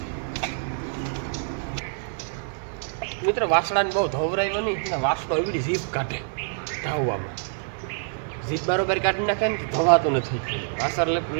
मित्र वासड़ा बहुत धवरायो नहीं ना वासड़ो एवडी जीभ काटे धाववामां जीभ बरोबर काटी नाखे ने धवातो नथी वासर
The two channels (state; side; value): silent; left; digital silence